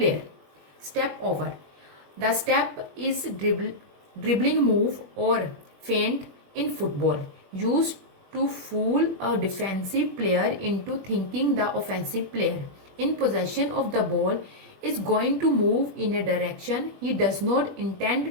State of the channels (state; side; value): late; left; 21 ms